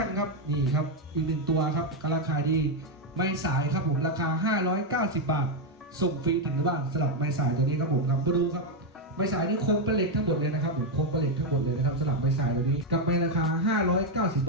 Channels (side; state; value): both; normal; correlation 0.03